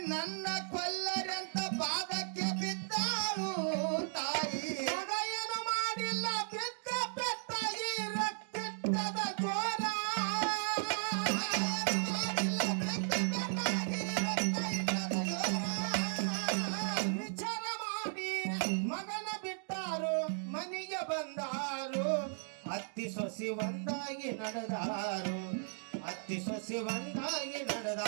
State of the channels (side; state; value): left; silent; digital silence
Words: ನನ್ನ ಕೊಲ್ಲರಂತ ಪಾದಕ್ಕೆ ಬಿದ್ದಾಳು ತಾಯಿ. ಮಗ ಏನು ಮಾಡಿಲ್ಲ ಬಿದ್ದ ಪೆಟ್ಟ ಈ ರಕ್ತದ ಜೋರ ಮಾಡಿಲ್ಲ ಬೆಕ್ಕ ಬೆಕ್ಕಾಗಿ ರಕ್ತ ಇಟ್ಟದ ಜೋರ. ವಿಚಾರ ಮಾಡಿ ಮಗನ ಬಿಟ್ಟಾರು ಮನೆಗೆ ಬಂದಾರು ಅತ್ತಿ ಸೊಸಿ ಒಂದಾಗಿ ನಡೆದಾರು ಅತ್ತಿ ಸೊಸಿ ಒಂದಾಗಿ